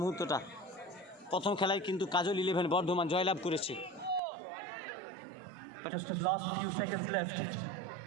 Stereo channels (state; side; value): drops out; left; at 4.2 s